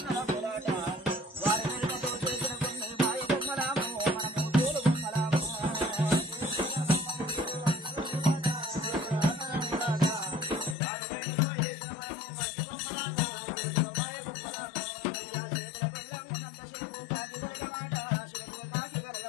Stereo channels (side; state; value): right; drops out; at 10.8 s